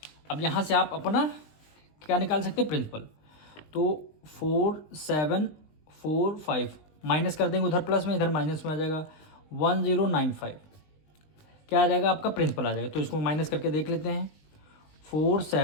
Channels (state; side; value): late; right; 20 ms